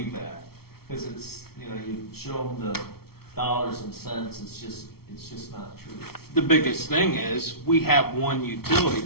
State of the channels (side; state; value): right; late; 0.95 ms